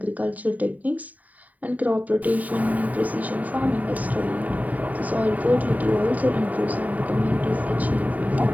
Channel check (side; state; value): left; late; 0.074 ms